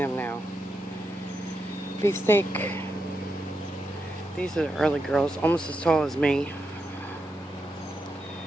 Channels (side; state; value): both; normal; correlation 0.85